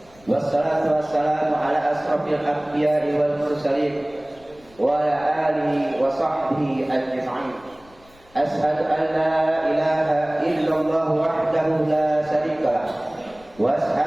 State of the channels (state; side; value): noise; left; rumble, 27 dB below the sound